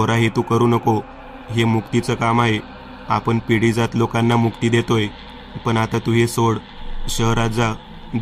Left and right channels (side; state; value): both; identical; correlation 1.00